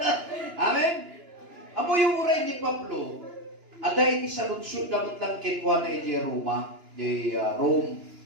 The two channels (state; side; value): late; left; 2.9 ms